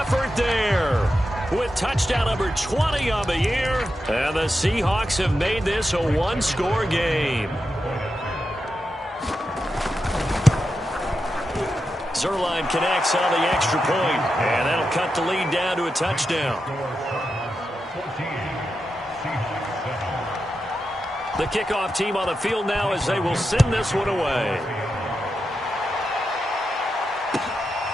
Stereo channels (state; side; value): normal; both; correlation 0.88